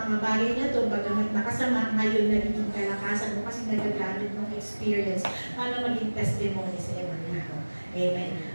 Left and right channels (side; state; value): both; inverted; correlation -1.00